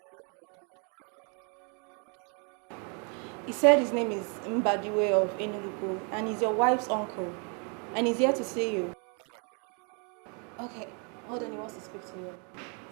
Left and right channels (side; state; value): left; quieter; 37.1 dB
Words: uncle the wife has. I want to see him. He said his name is Mbadiwe of Enugu and he's your wife's uncle. And he's here to see you. All right, give him the phone. Okay, hold on, he wants to speak to you.